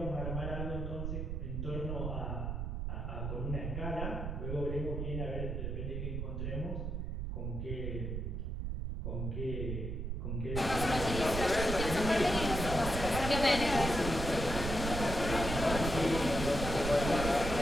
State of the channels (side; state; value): right; noise; rumble, 3 dB below the sound